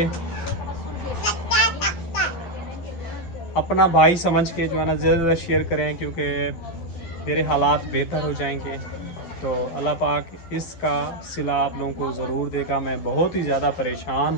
के जो है ना ज़्यादा शेयर करें, क्योंकि मेरे हालात बेहतर हो जाएंगे तो अल्लाह पाक इसका सिला आप लोगों को ज़रूर देगा। मैं बहुत ही ज़्यादा परेशान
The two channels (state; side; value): late; right; 12 ms